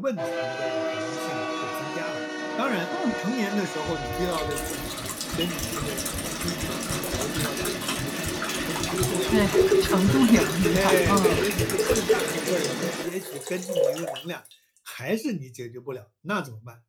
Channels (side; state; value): both; identical; correlation 1.00